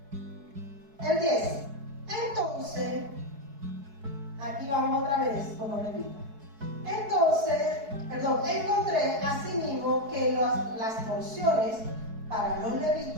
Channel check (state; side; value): late; left; 4.6 ms